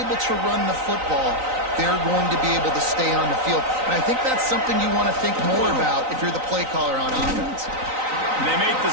to run the football, they're going to be able to stay on the field. And I think that's something you want to think more about if you're the play caller on offense. They make the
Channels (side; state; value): left; late; 3.9 ms